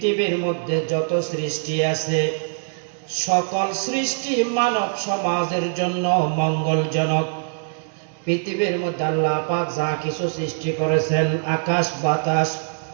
মধ্যে যত সৃষ্টি আছে সকল সৃষ্টি মানব সমাজের জন্য মঙ্গলজনক। পৃথিবীর মধ্যে আল্লাহ পাক যা কিছু সৃষ্টি করেছেন, আকাশ বাতাস,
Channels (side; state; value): left; silent; digital silence